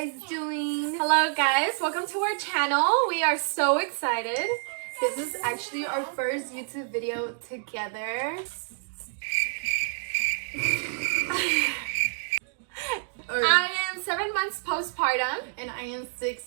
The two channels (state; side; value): silent; left; digital silence